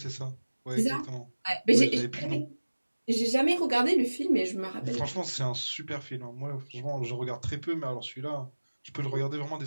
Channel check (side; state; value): both; inverted; correlation -1.00